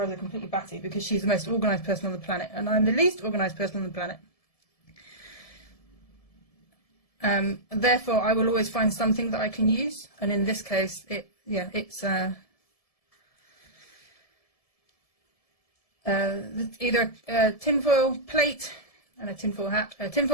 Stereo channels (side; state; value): right; late; 1.7 ms